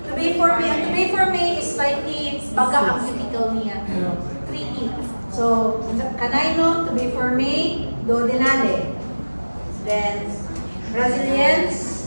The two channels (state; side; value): inverted; both; correlation -1.00